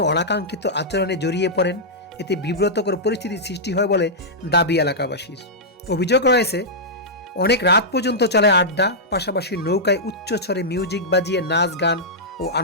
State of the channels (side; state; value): both; normal; correlation -0.10